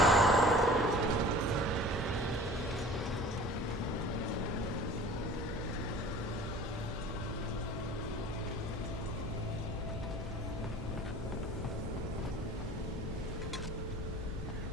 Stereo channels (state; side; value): normal; both; correlation 0.44